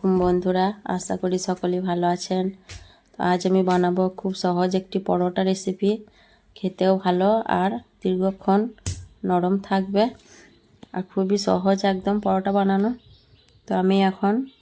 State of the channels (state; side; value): identical; both; correlation 1.00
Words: বন্ধুরা, আশা করি সকলেই ভালো আছেন। তো আজ আমি বানাবো খুব সহজ একটি পরোটা রেসিপি। খেতেও ভালো আর দীর্ঘক্ষণ নরম থাকবে আর খুবই সহজ একদম পরোটা বানানো। তো আমি এখন